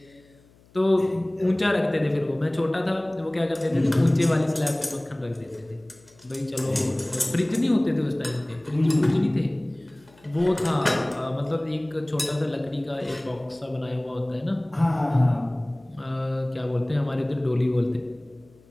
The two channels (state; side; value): noise; left; hum, 29 dB below the sound